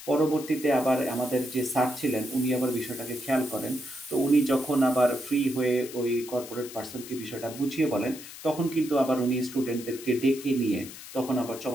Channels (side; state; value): left; noise; hiss, 14 dB below the sound